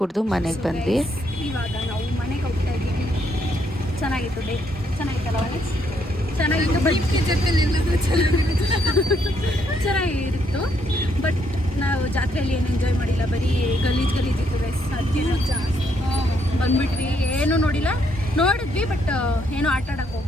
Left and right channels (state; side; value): normal; both; correlation 0.73